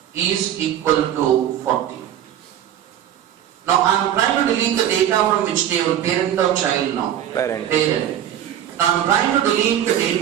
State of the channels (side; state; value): left; quieter; 10.8 dB